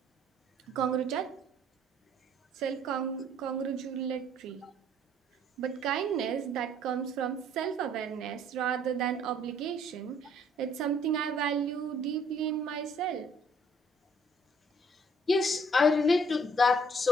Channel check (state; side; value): normal; both; correlation 0.61